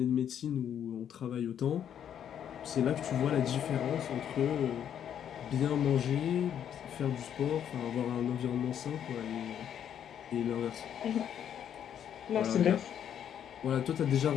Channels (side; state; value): right; quieter; 9.3 dB